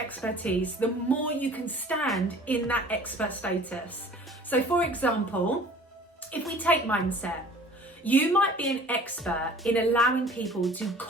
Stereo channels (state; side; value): normal; both; correlation 0.48